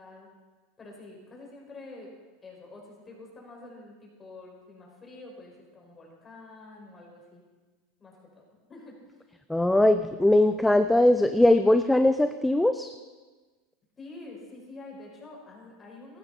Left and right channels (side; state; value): both; normal; correlation 0.93